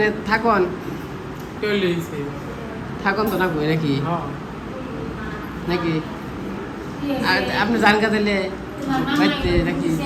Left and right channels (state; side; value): identical; both; correlation 1.00